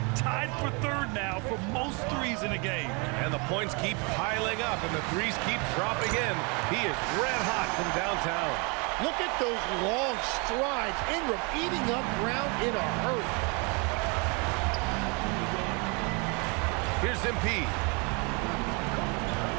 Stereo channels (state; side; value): quieter; left; 31.7 dB